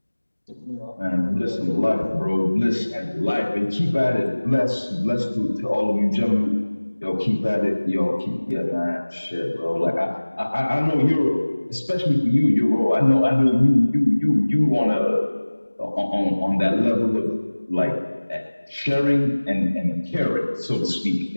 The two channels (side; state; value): both; inverted; correlation -1.00